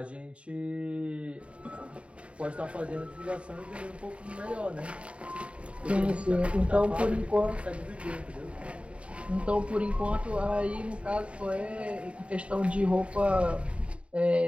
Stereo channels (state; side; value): late; left; 0.061 ms